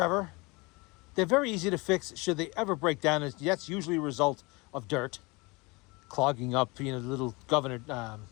They're very easy to fix should they ever break down. That's usually a result of dirt clogging up, the little governor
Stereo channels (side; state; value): right; quieter; 25.9 dB